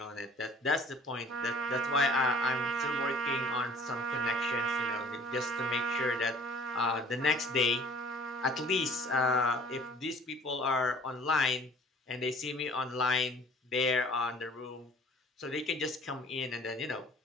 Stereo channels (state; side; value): normal; both; correlation 0.51